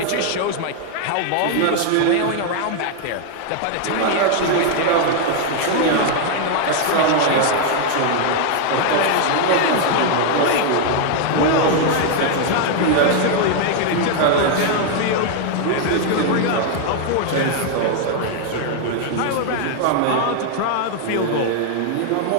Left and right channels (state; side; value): different; both; correlation 0.00